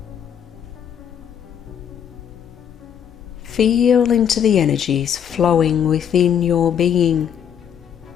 Feel into the energies flowing within your being,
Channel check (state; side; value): quieter; right; 8.7 dB